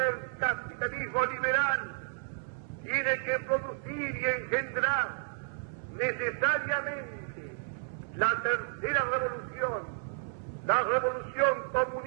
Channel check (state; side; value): silent; left; 57 dB below the other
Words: capitalismo liberal tiene que producir y engendrar necesariamente la tercera revolución, la revolución